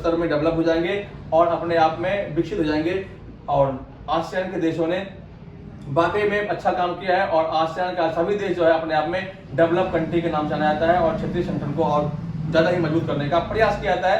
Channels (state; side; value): identical; both; correlation 1.00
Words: में डेवलप हो जाएंगे और अपने आप में विकसित हो जाएंगे। और आसियान के देशों ने वाकई में अच्छा काम किया है और आसियान का सभी देश जो है अपने आप में डेवलप कंट्री के नाम जाना जाता है और क्षेत्रीय संगठन को और ज्यादा ही मजबूत करने का प्रयास किया जाता